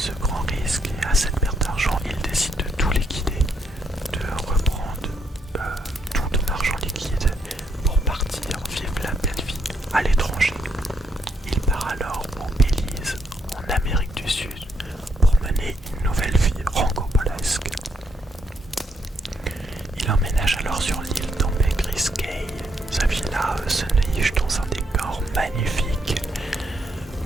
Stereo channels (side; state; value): both; normal; correlation 0.75